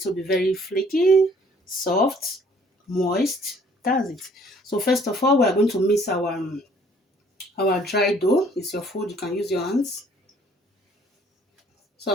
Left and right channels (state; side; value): normal; both; correlation 0.59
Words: to be very flaky, soft, moist. That's it. So first of all, we are going to mix our dry dough. It's your food. You can use your hands. So